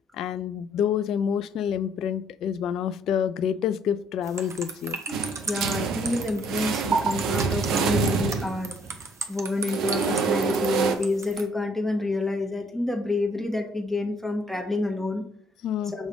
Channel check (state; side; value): normal; both; correlation 0.64